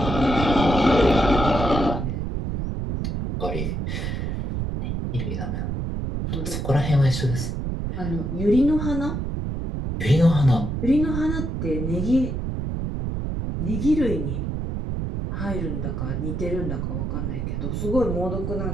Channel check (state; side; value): noise; right; rumble, 2 dB below the sound